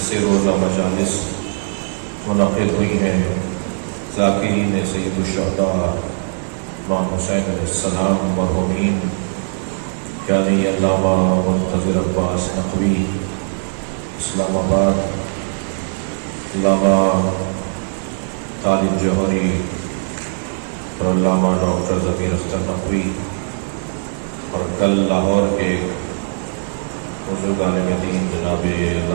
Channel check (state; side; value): silent; left; digital silence